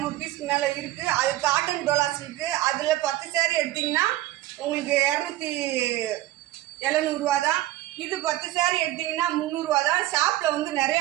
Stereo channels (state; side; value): quieter; left; 15.6 dB